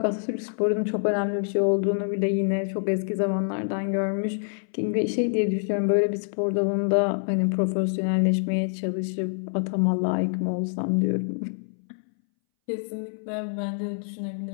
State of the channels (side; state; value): right; silent; 61 dB below the other